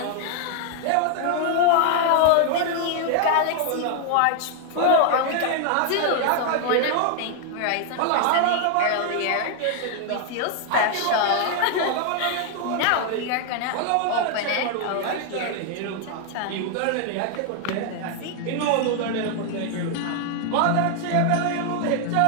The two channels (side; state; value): both; different; correlation 0.00